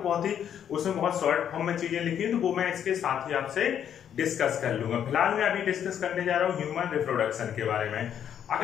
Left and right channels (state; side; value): quieter; right; 9.2 dB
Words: बहुत ही उसमें बहुत शॉर्ट फॉर्म में चीजें लिखी है तो वो मैं इसके साथ ही आपसे डिस्कस कर लूंगा। फिलहाल मैं अभी डिस्कस करने जा रहा हूँ ह्यूमन रिप्रोडक्शन के बारे में।